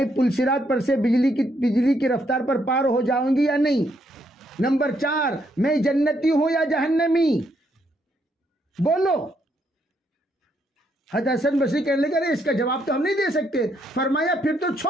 پلسرات پر سے بجلی کی رفتار پر پار ہو جاؤں گی یا نہیں؟ نمبر 4، میں جنتی ہوں یا جہنمی؟ بولو. حضرت حسن بصری کہنے لگے ارے اس کا جواب تو ہم نہیں دے سکتے. فرمایا پھر تو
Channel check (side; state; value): both; normal; correlation 0.74